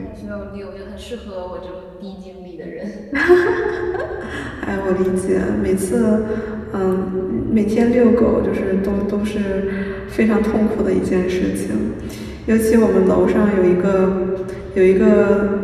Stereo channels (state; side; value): identical; both; correlation 1.00